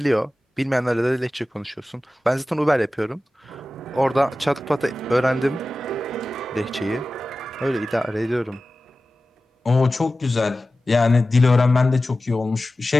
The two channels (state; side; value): normal; both; correlation 0.95